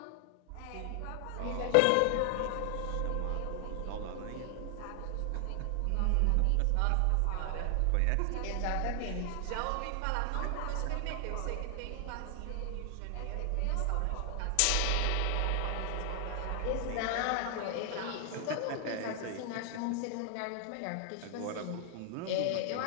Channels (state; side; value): different; both; correlation 0.00